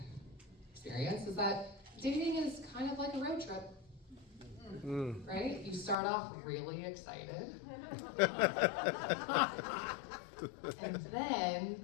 experience is that dating is kind of like a road trip, right? You start off really excited, and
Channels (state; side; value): drops out; right; at 6.0 s